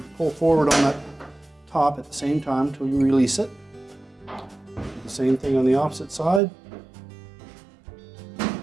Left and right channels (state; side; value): drops out; left; at 6.4 s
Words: pull forward on that top at the same time until you release it. Do the same thing on the opposite side. And